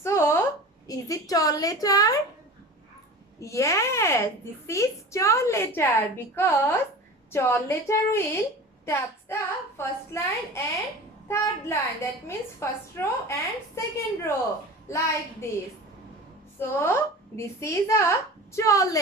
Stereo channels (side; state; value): both; normal; correlation 0.35